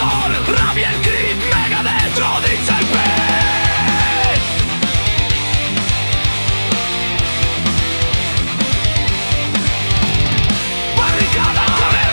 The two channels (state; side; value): inverted; both; correlation -1.00